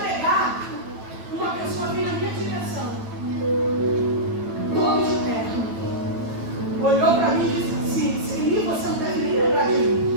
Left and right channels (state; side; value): late; left; 9.0 ms